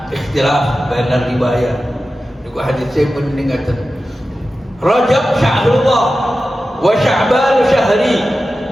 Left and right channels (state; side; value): normal; both; correlation 0.93